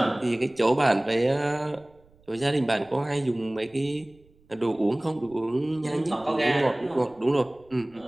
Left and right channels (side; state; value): right; noise; rumble, 30 dB below the sound